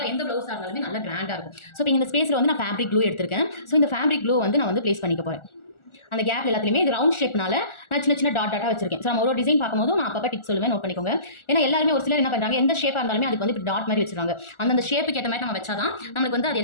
எந்த ப்ளவுஸாக இருந்தாலுமே நல்லா கிராண்டாக இருக்கும். ஸோ இப்போ இந்த ஸ்பேஸில் வந்து நான் ஃபேப்ரிக் க்ளூ எடுத்திருக்கேன். ஸோ இந்த ஃபேப்ரிக் க்ளூ வந்து நான் வந்து ப்ளேஸ் பண்ணிக்க போகிறேன். அந்த கேப் எல்லாத்துலேயுமே இது ரவுண்ட் ஷேப்னால நான் சின்ன சின்ன டாட்டாக வச்சிருக்கேன். ஸோ நம்ம ஒரு டிசைன் பார்க்கும்போது நான் அப்போ டிப்ஸ் சொல்லுவேன், நோட் பண்ணிக்கோங்க. ஏன்னா எல்லாருமே ஒரு சிலர் என்ன பண்ணுறாங்க, எந்த ஷேப்பாக இருந்தாலுமே அதுக்கு வந்து இப்படி டாட் மாதிரி வச்சிருக்காங்க. அந்த ஷேப்புக்கு ஏற்ற மாதிரி நம்ம வச்சாதான் நம்மளுக்கு வந்து அது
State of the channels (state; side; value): late; right; 1.4 ms